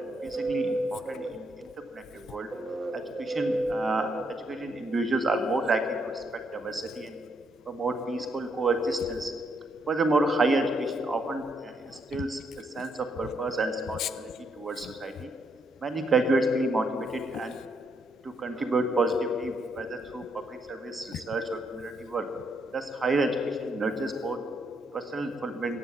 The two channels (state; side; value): normal; both; correlation 0.75